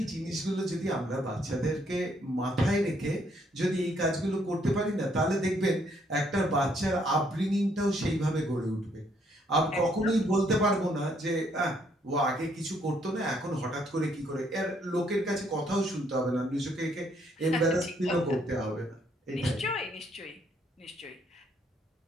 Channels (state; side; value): normal; both; correlation 0.69